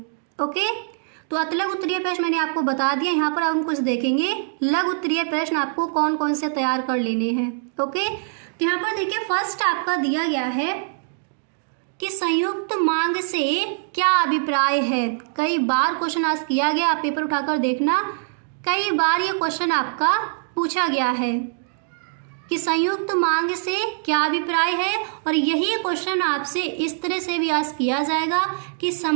ओके। तो अतलग उत्तरीय प्रश्न मैंने आपको बता दिया, यहाँ पर हम कुछ देखेंगे लघु उत्तरीय प्रश्न आपको कौन कौन से तैयार कर लेने हैं, ओके। तो यहाँ पर देखिए फर्स्ट आपका दिया गया है कि संयुक्त मांग से क्या अभिप्राय है। कई बार क्वेश्चन आज किया गया, आप पेपर उठाकर देखना, कई बार ये क्वेश्चन आपका पूछा गया है कि संयुक्त मांग से क्या अभिप्राय है। और यही क्वेश्चन आपसे इस तरह से भी आज किया जाएगा कि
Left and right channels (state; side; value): silent; left; digital silence